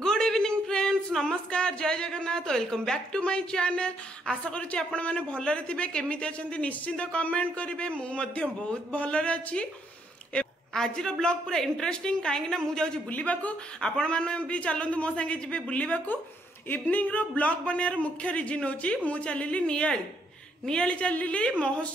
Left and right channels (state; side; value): normal; both; correlation 0.73